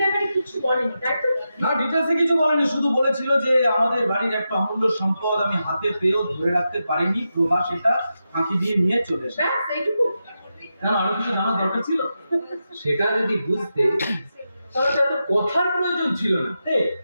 ব্যাপারে কিছু বলেনি তাই তো? না, ডিটেলসে কিছু বলেনি, শুধু বলেছিল যে আমাদের বাড়ির একটা অমূল্য সম্পদ আমি হাতে পেয়েও ধরে রাখতে পারিনি, প্রভা সেটা ফাঁকি দিয়ে নিয়ে চলে এসেছে। ব্যাস এইটুকু? কেন আরো কিছু জানার দরকার ছিল? সেটা যদি বুঝতে তাহলে তো এত কথার প্রয়োজন ছিল না।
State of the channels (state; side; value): inverted; both; correlation -0.89